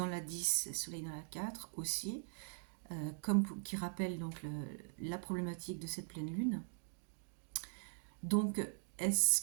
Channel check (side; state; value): left; silent; digital silence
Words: la 10, Soleil dans la 4 aussi, qui rappelle donc la problématique de cette pleine lune. Donc, est-ce